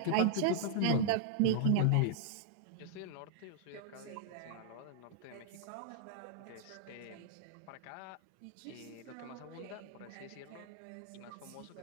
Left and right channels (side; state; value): both; different; correlation -0.01